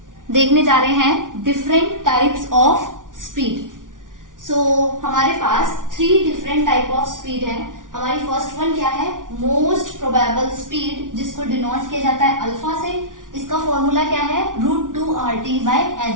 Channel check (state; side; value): late; left; 0.88 ms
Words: देखने जा रहे हैं डिफरेंट टाइप्स ऑफ स्पीड। सो हमारे पास 3 डिफरेंट टाइप ऑफ स्पीड है। हमारी फर्स्ट वन क्या है, मोस्ट प्रोबेबल स्पीड, जिसको डिनोट किया जाता है अल्फा से। इसका फॉर्मूला क्या है,